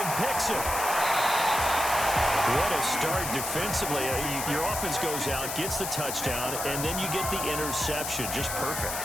picks it. What a start defensively. Your offense goes out, gets the touchdown, and then you get the interception. Just perfect.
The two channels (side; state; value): left; noise; hiss, 4 dB below the sound